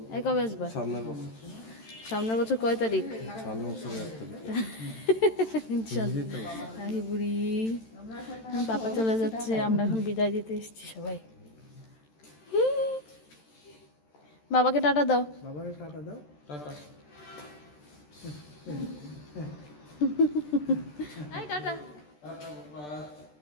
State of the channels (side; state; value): right; late; 13 ms